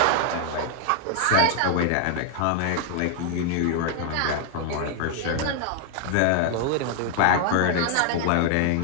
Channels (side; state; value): both; different; correlation 0.00